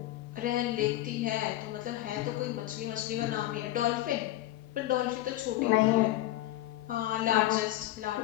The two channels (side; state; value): right; quieter; 15.3 dB